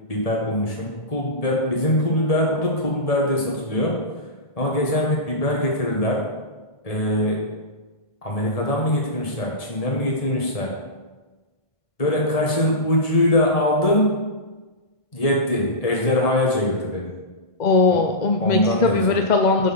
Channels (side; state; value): right; late; 1.7 ms